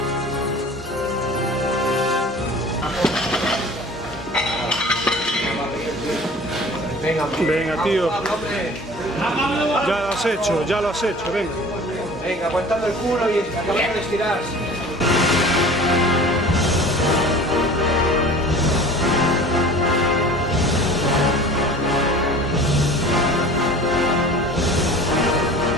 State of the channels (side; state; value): both; normal; correlation 0.43